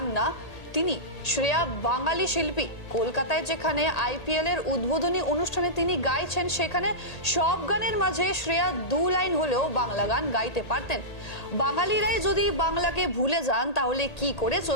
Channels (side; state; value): right; late; 1.8 ms